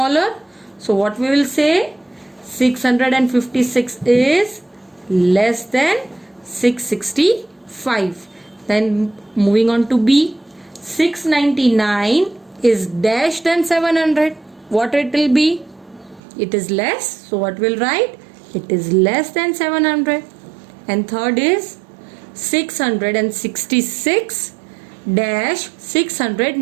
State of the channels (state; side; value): drops out; left; at 16.2 s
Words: So what we will say? 656 is less than 665. Then moving on to B. 699 is dash than 700. What it will be? It is less. So what we'll write? It is less than 700. And third is 666 dash